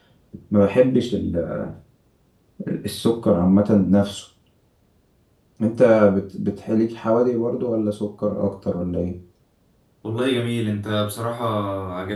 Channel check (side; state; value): both; identical; correlation 1.00